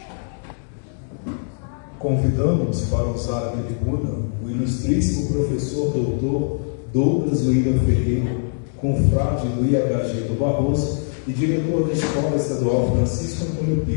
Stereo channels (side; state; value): right; silent; digital silence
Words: Convidamos para usar a tribuna o ilustríssimo professor doutor Douglas William Ferreira, confrade do IHG do Barroso e diretor da Escola Estadual Francisco Antônio